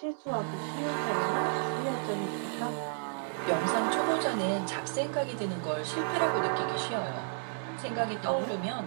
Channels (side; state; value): left; silent; 56 dB below the other